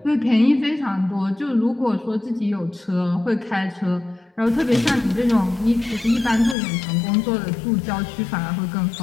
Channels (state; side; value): drops out; right; at 6.6 s